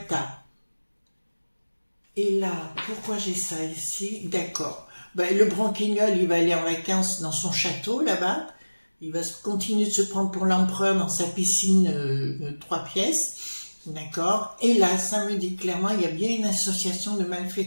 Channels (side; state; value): both; inverted; correlation -1.00